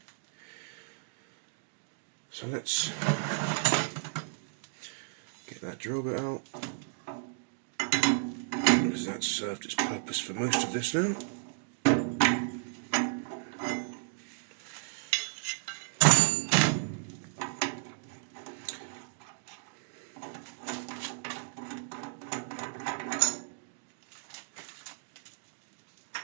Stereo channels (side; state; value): left; silent; digital silence